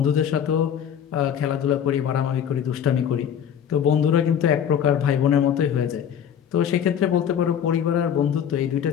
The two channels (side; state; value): right; quieter; 8.8 dB